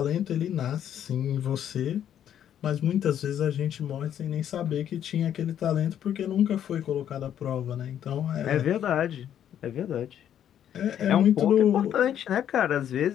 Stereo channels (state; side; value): quieter; right; 10.1 dB